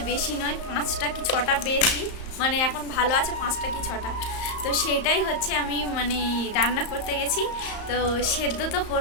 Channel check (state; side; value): late; right; 34 ms